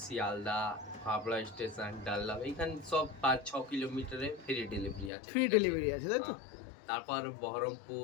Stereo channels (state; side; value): drops out; right; at 5.1 s